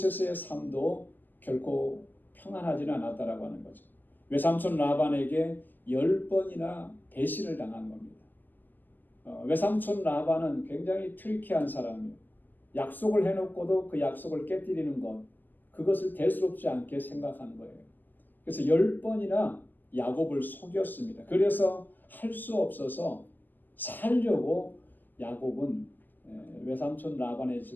삶도 결코 평안하지는 않았다라고 하는 거죠. 외삼촌 라반에게 10번이나 배신을 당한 겁니다. 외삼촌 라반은 굉장히 트리키한 사람이에요. 약속을 해놓고도 그 약속을 깨뜨리는 것, 그것을 대수롭지 않게 생각하는 거예요. 그래서 10번이나 야곱을 속였습니다. 그래서 할 수 없어서 살려고 야곱은 외삼촌 라반의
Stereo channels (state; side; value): late; right; 0.087 ms